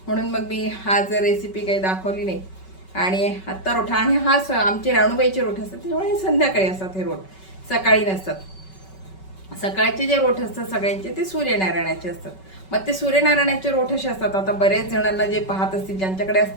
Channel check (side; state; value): right; late; 5.3 ms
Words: म्हणून मग मी आज रेसिपी काही दाखवली नाही. आणि आत्ता रोठा आणि आमचे राणूबाईचे रोठ असतात, त्यामुळे संध्याकाळी असतात हे रोठ, सकाळी नसतात. सकाळचे जे रोठ असतात सगळ्यांचे ते सूर्यनारायणाचे असतात. मग ते सूर्यनारायणाचे रोठ असे असतात. आता बऱ्याच जणांना जे पाहत असतील, ज्यांच्याकडे